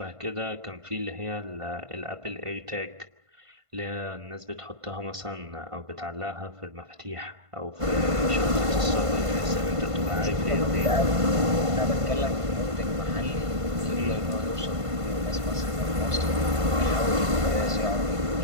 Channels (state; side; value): late; left; 1.5 ms